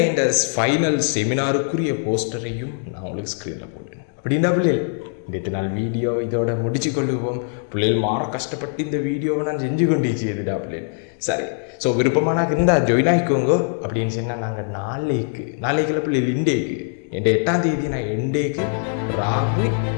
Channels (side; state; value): right; silent; 64 dB below the other